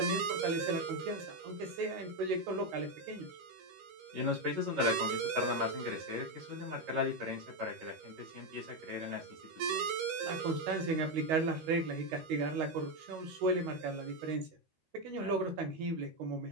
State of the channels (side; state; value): left; late; 13 ms